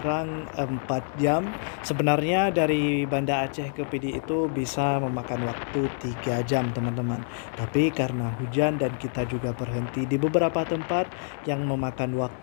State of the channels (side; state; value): right; silent; digital silence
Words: 4 jam, sebenarnya dari Banda Aceh ke Pidi itu bisa memakan waktu 3 jam, teman-teman. Tapi karena hujan dan kita juga berhenti di beberapa tempat yang memakan